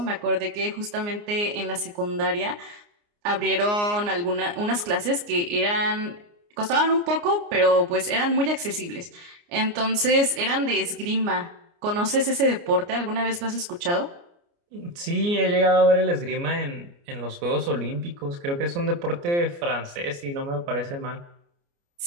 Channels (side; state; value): left; late; 29 ms